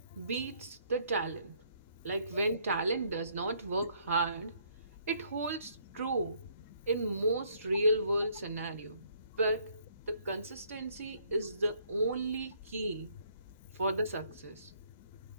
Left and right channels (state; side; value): inverted; both; correlation -0.66